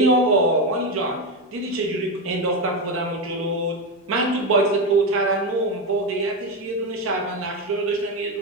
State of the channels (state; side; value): normal; both; correlation 0.12